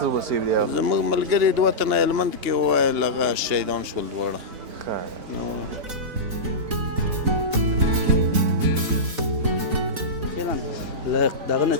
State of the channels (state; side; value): late; left; 4.0 ms